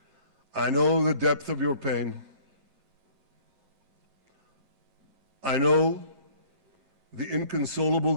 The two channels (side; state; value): left; late; 11 ms